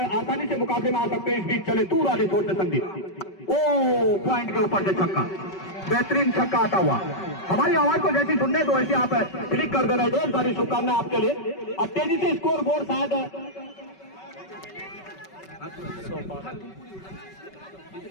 से मुकाबले में आ सकते हैं। इस बीच चले दूर वाली छोड़ से संदीप, ओ पॉइंट के ऊपर से छक्का, बेहतरीन छक्का आता हुआ। हमारी आवाज को जैसी सुनने तो वैसे आप क्लिक कर देना। ढेर सारी शुभकामनाएं आपके लिए। अब तेजी से स्कोर बोर्ड शायद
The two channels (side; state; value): right; late; 5.3 ms